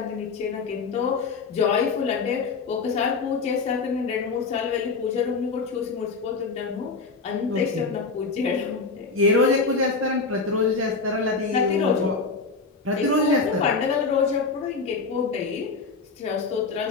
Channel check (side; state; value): right; quieter; 4.4 dB